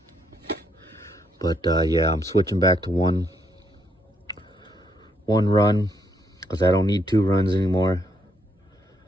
But yeah, I'm switching back to one run because I don't need two runs anymore.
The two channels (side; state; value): both; normal; correlation 0.75